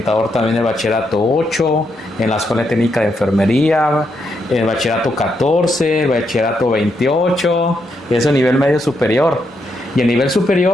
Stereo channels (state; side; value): normal; both; correlation 0.80